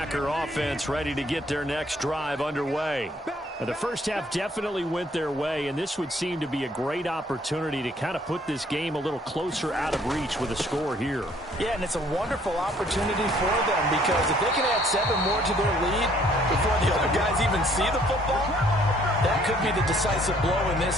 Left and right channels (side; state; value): both; normal; correlation 0.62